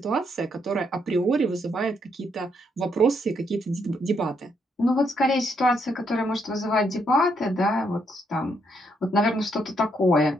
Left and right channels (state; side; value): normal; both; correlation 0.75